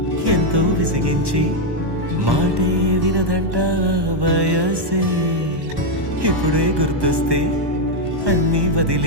ఎంతో విసిగించి మాటే వినదంట వయసే, ఇప్పుడే గుర్తొస్తే అన్నీ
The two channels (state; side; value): late; left; 1.1 ms